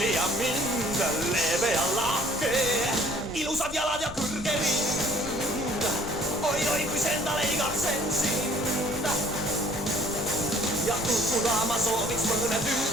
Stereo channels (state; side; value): noise; right; rumble, 16 dB below the sound